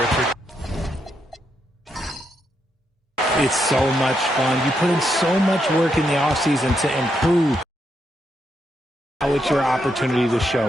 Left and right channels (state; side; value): normal; both; correlation 0.80